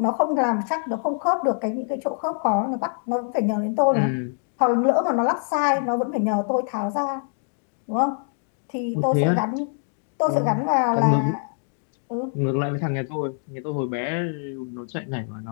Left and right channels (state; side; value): silent; right; 62 dB below the other